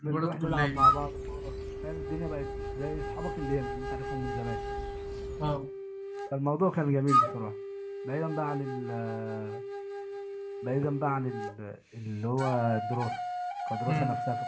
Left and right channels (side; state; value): both; identical; correlation 1.00